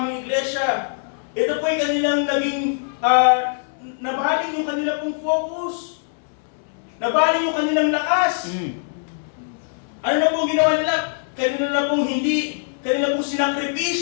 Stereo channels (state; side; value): silent; right; digital silence